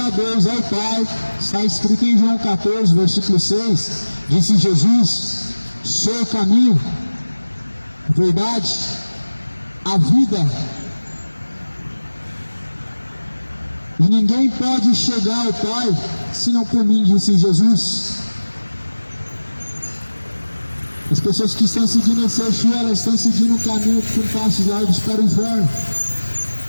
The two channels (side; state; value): both; inverted; correlation -1.00